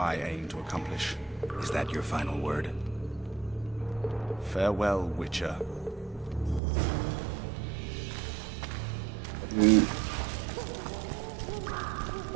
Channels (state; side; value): drops out; left; at 6.6 s